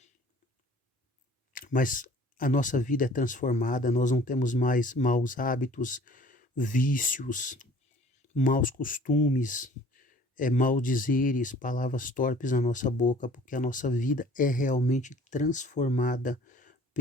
Mas a nossa vida é transformada, nós não temos mais maus hábitos, vícios, maus costumes, maldizeres, palavras torpes na nossa boca, porque a nossa vida é realmente transformada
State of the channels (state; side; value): normal; both; correlation 0.50